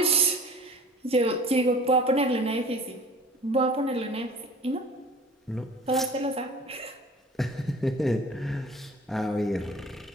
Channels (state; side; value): normal; both; correlation 0.45